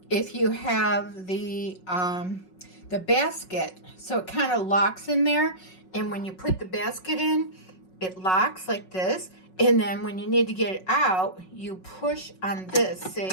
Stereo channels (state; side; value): late; right; 5.4 ms